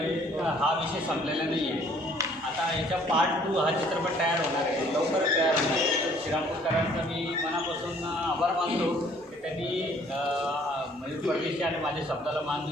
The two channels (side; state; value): both; normal; correlation 0.59